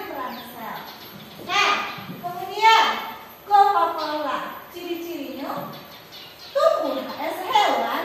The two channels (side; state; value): both; identical; correlation 1.00